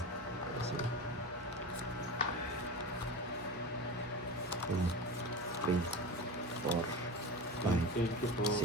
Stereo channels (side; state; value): left; noise; hum, 21 dB below the sound